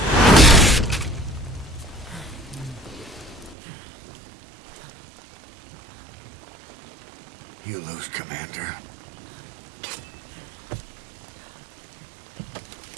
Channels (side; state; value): left; drops out; at 3.6 s